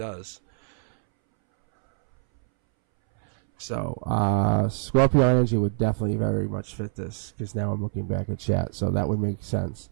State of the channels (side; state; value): left; silent; 62 dB below the other